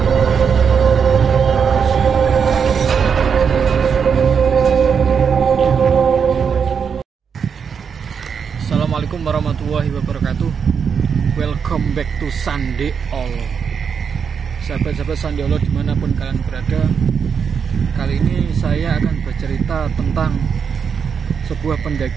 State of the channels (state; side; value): quieter; left; 6.6 dB